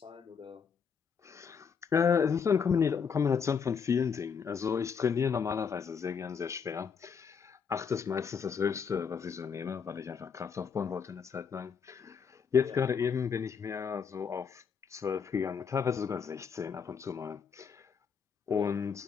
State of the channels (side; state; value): right; quieter; 6.5 dB